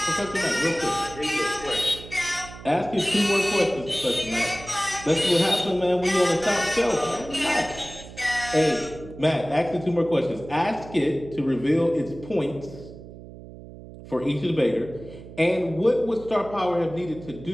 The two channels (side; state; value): right; noise; hum, 16 dB below the sound